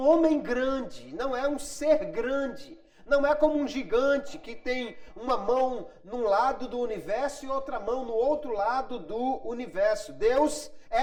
grande, não é um ser grande. Não é como um gigante que tem uma mão num lado do universo e outra mão no outro lado do universo. Deus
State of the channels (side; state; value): both; identical; correlation 1.00